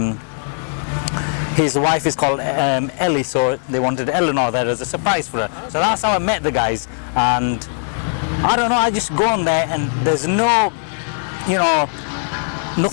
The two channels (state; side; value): silent; right; digital silence